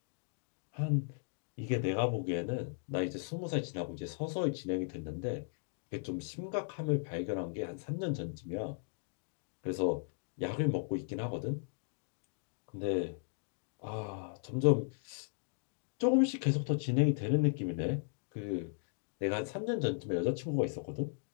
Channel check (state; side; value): silent; right; digital silence